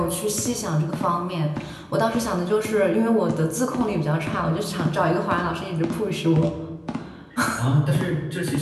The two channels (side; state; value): both; identical; correlation 1.00